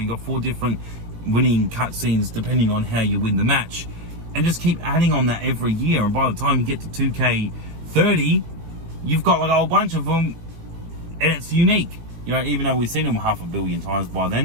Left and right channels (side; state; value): left; late; 19 ms